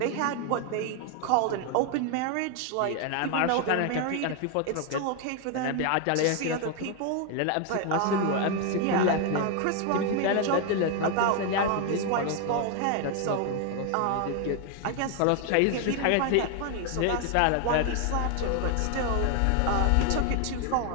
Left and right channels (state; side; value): different; both; correlation 0.01